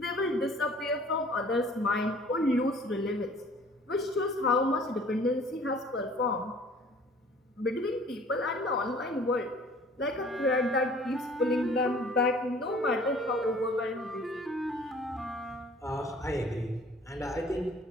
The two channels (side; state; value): both; normal; correlation 0.52